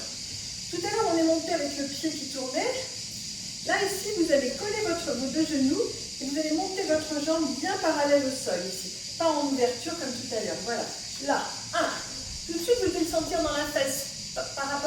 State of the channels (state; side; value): identical; both; correlation 1.00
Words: Tout à l'heure, on est monté avec le pied qui tournait. Là, ici, vous allez coller vos deux genoux et vous allez monter votre jambe bien parallèle au sol ici. Pas en ouverture comme tout à l'heure. Voilà. Là, 1. Tout de suite, vous devez le sentir dans la fesse par